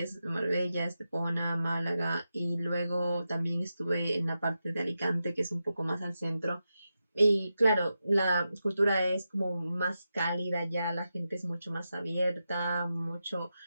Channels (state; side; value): inverted; both; correlation -0.89